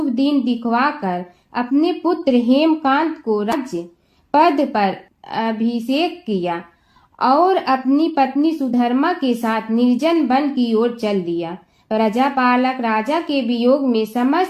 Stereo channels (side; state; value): both; identical; correlation 1.00